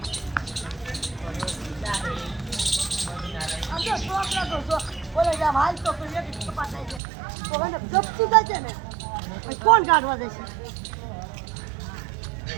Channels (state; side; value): drops out; left; at 7.0 s